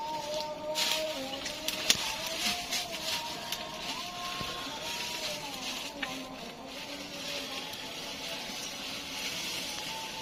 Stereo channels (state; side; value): identical; both; correlation 1.00